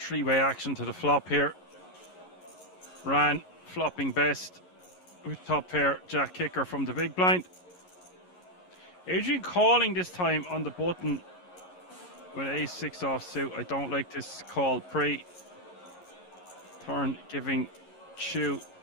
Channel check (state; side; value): late; right; 11 ms